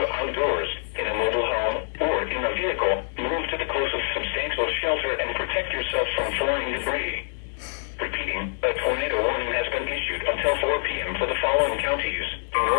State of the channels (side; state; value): right; silent; digital silence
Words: outdoors, in a mobile home, or in a vehicle, move to the closest substantial shelter and protect yourself from flying debris. Repeating, a tornado warning has been issued until 4 p.m. for the following counties in